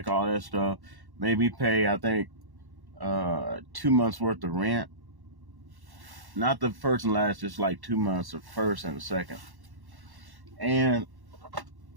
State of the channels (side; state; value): left; late; 1.1 ms